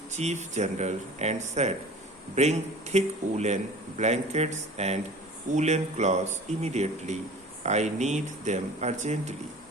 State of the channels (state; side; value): normal; both; correlation 0.41